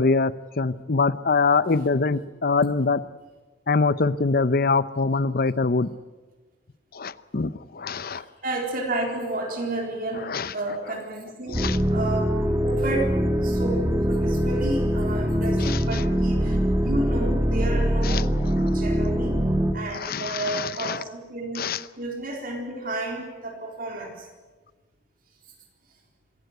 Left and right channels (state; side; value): normal; both; correlation 0.49